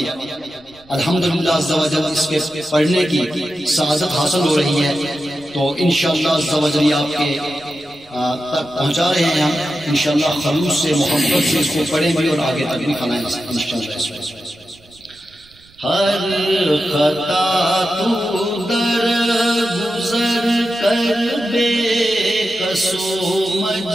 الحمدللہ عز و جل اس کے پڑھنے کی سعادت حاصل ہو رہی ہے، تو انشاءاللہ عز و جل آپ کے تک پہنچا رہے ہیں ہم انشاءاللہ خلوص سے محبت سے اس کو پڑھیں بھی اور آگے تک بھی پھیلائیں انشاءاللہ۔ ہر خطا تو در گزر کر بے قصو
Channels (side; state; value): right; noise; rumble, 29 dB below the sound